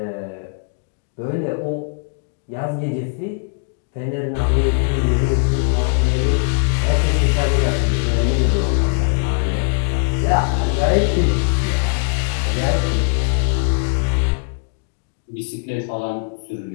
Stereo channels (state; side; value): quieter; right; 39.4 dB